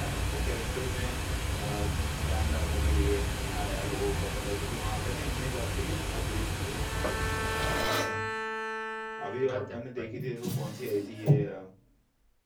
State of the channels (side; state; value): both; identical; correlation 1.00